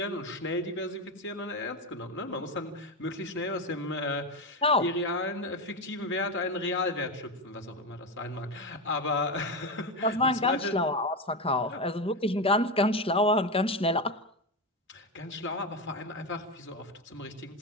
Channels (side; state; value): both; normal; correlation 0.15